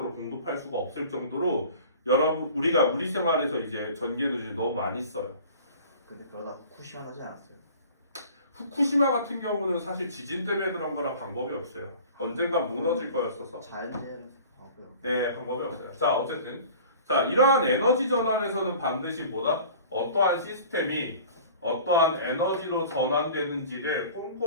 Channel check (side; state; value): both; inverted; correlation -0.44